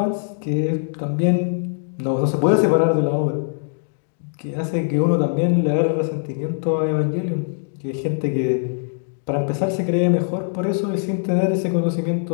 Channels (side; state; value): right; silent; digital silence